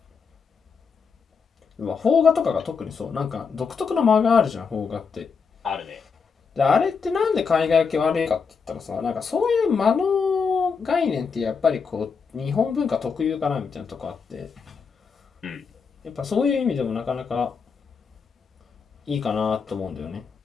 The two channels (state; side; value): quieter; right; 5.6 dB